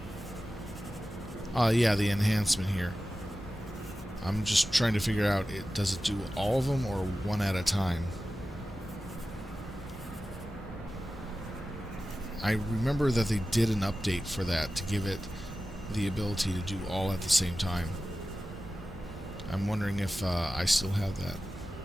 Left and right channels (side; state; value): both; normal; correlation 0.94